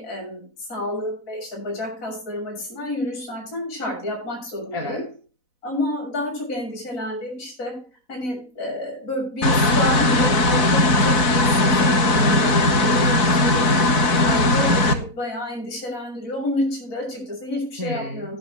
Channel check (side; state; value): right; late; 4.0 ms